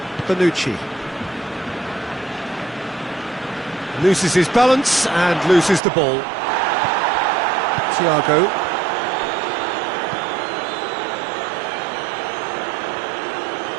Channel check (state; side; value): drops out; left; at 5.8 s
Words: Panucci. Loses his balance and loses the ball. Thiago.